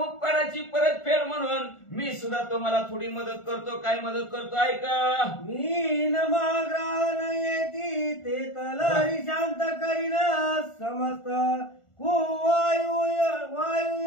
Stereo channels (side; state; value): right; late; 1.4 ms